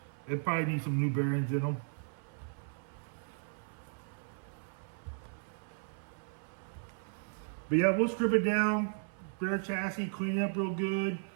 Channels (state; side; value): silent; left; 54 dB below the other